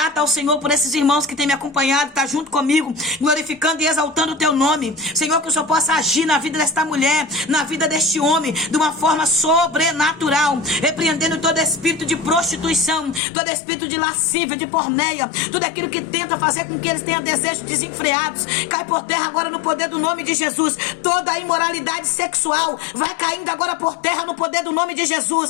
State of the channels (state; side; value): drops out; right; at 13.2 s